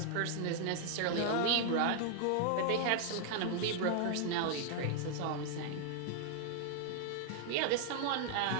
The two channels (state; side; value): different; both; correlation 0.00